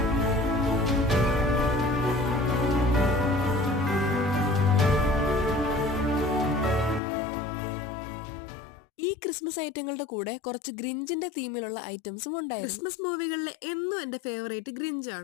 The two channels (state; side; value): drops out; right; at 7.0 s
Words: ഈ ക്രിസ്മസ് ഐറ്റങ്ങളുടെ കൂടെ കുറച്ച് ഗ്രിഞ്ചിന്റെ തീമിലുള്ള ഐറ്റംസും ഉണ്ടായിരുന്നു. ക്രിസ്മസ് മൂവികളിലെ എന്നും എന്റെ ഫേവറേറ്റ്